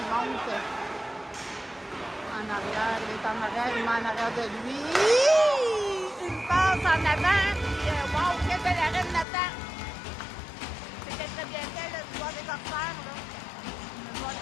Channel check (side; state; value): right; drops out; at 9.2 s